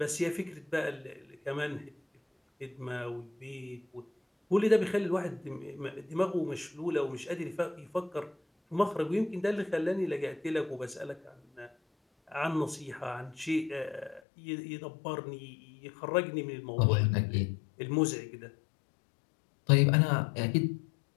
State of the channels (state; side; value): drops out; right; at 14.2 s